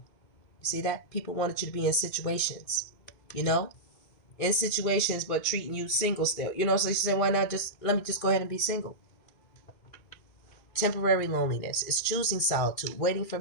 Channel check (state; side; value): late; right; 2.5 ms